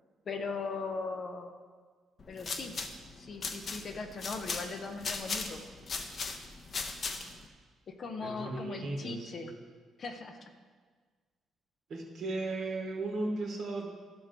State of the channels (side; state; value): both; normal; correlation 0.77